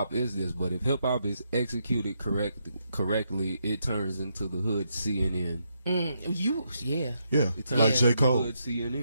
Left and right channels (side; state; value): both; inverted; correlation -0.79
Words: is this, but if hip hop is executed correctly, it turns into the hood CNN. Like J. Cole. Hood